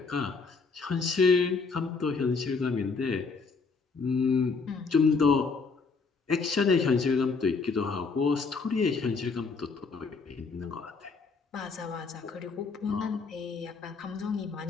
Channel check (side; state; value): right; quieter; 4.6 dB